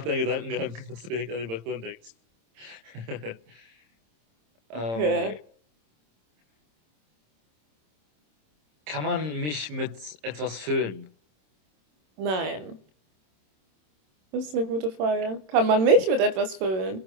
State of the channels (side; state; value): left; late; 26 ms